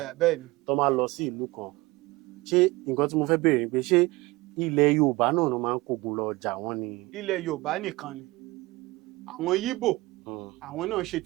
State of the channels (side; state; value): left; quieter; 21.4 dB